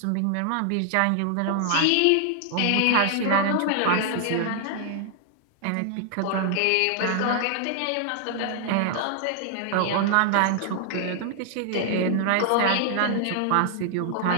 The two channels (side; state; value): both; different; correlation 0.00